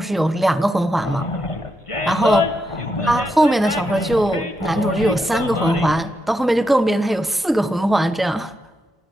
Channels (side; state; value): both; normal; correlation 0.84